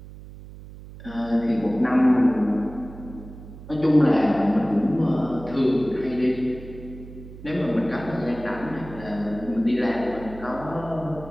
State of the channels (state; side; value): noise; right; hum, 16 dB below the sound